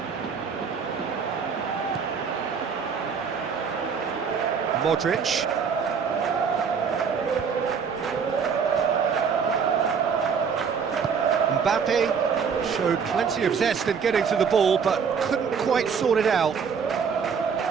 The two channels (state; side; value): quieter; left; 6.3 dB